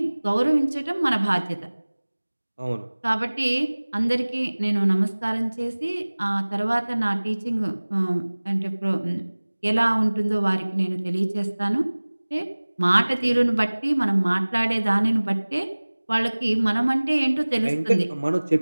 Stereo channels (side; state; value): both; inverted; correlation -1.00